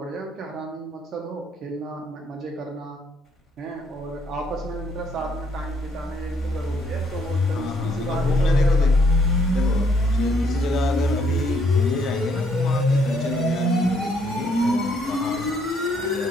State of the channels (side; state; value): both; normal; correlation 0.69